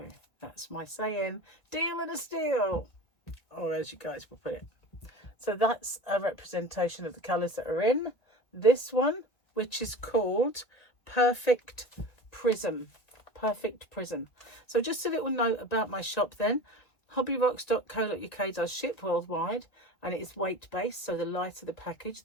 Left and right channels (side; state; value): right; late; 1.8 ms